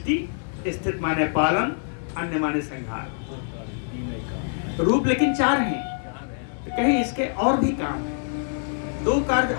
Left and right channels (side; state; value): right; silent; 60 dB below the other